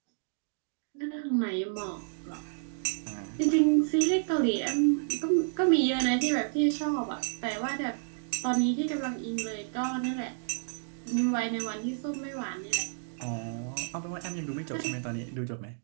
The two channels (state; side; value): silent; left; digital silence